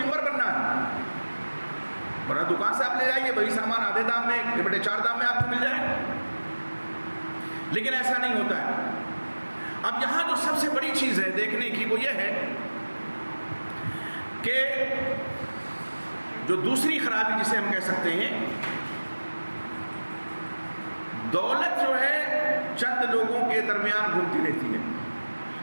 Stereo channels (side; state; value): both; inverted; correlation -1.00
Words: بننا ہے، ورنہ دکان سے آپ لے جائیے وہی سامان آدھے دام میں، بڑے 4 دام میں آپ کو مل جائے، لیکن ایسا نہیں ہوتا ہے۔ اب یہاں جو سب سے بڑی چیز ہے دیکھنے کی وہ یہ ہے کہ جو دوسری خرابی جسے ہم کہہ سکتے ہیں، دولت جو ہے چند لوگوں کے درمیان گھومتی رہتی ہے۔